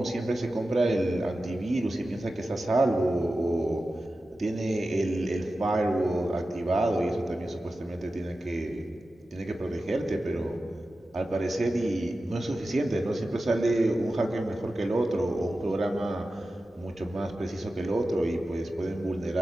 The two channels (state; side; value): normal; both; correlation 0.93